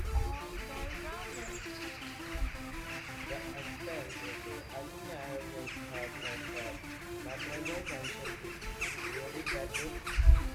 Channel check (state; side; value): identical; both; correlation 1.00